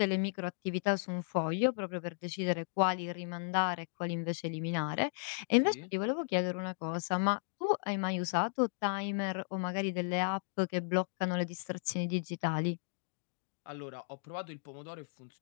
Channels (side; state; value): right; silent; digital silence